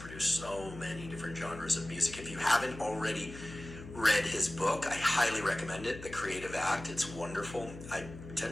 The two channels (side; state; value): left; noise; hum, 13 dB below the sound